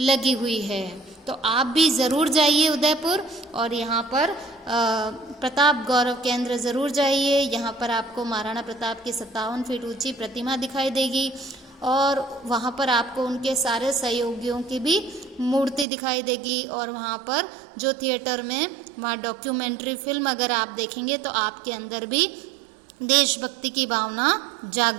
लगी हुई है। तो आप भी ज़रूर जाइए उदयपुर, और यहाँ पर प्रताप गौरव केंद्र ज़रूर जाइए। यहाँ पर आपको महाराणा प्रताप की 57 फीट ऊंची प्रतिमा दिखाई देगी, और वहाँ पर आपको उनके सारे सहयोगियों की भी मूर्ति दिखाई देगी। और वहाँ पर जो थिएटर में वहाँ डॉक्यूमेंट्री फिल्म अगर आप देखेंगे तो आपके अंदर भी देशभक्ति की भावना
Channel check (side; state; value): left; drops out; at 15.9 s